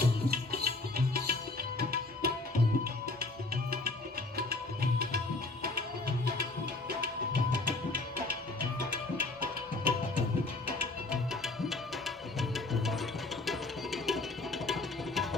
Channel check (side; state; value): right; quieter; 3.2 dB